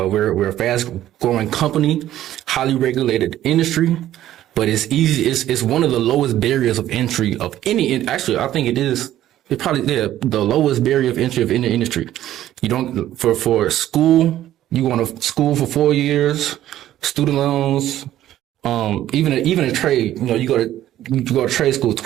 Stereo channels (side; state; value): left; quieter; 12.9 dB